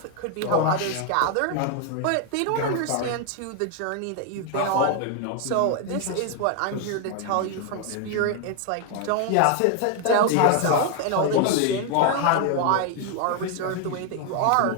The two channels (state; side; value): different; both; correlation 0.00